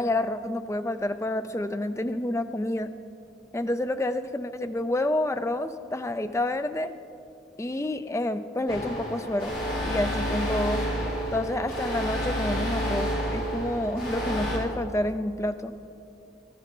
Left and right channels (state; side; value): normal; both; correlation 0.70